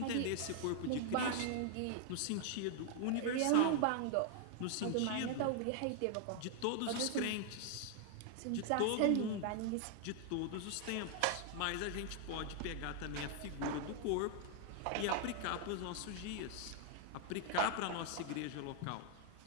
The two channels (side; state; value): both; different; correlation 0.00